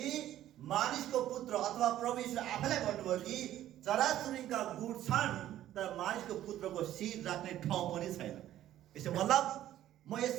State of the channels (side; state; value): left; quieter; 12.8 dB